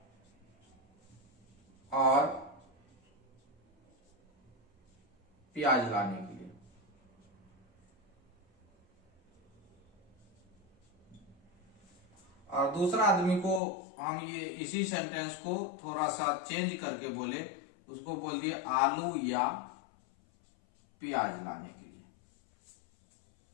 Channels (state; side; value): drops out; right; at 13.6 s